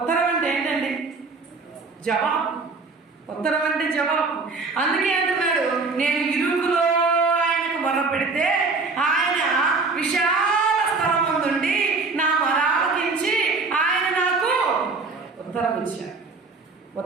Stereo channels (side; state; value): left; quieter; 4.0 dB